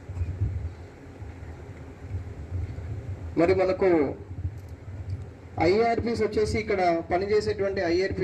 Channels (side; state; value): both; identical; correlation 1.00